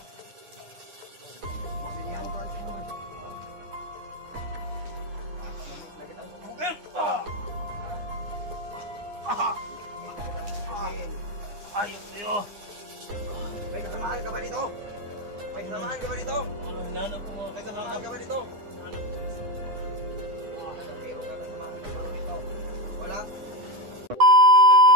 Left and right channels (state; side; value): late; left; 9.8 ms